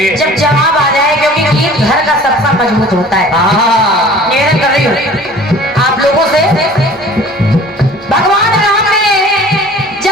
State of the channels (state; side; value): normal; both; correlation 0.47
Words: जब जवाब आ जाए, क्योंकि गीत घर का सबका मजबूत होता है। निवेदन कर रही हूँ आप लोगों से। भगवान राम ने